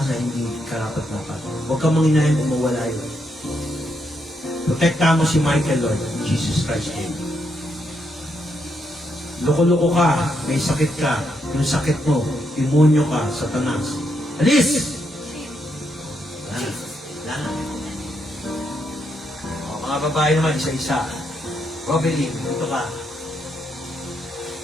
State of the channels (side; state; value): both; normal; correlation 0.79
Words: na hindi karapat-dapat. Huwag kang manginahin kung mawala yun. Protekta mo si Michael, Lord, in Jesus Christ's name. Loko-loko ka, may sakit ka, yung sakit mo, demonyo ka, satanas. Alis! Lana. O, mga babae naman, isa-isa. Robelin, dito ka.